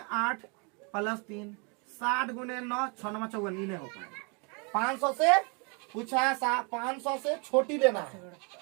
8 प्लस 3, 60 गुने 9, 6 9 54, नहीं हो पाएगा। 500 से पूछा है, 500 से छोटी लेना है,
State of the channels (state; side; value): quieter; left; 34.2 dB